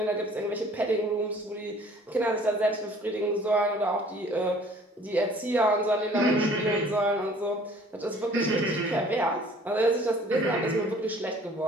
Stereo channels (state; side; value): normal; both; correlation 0.53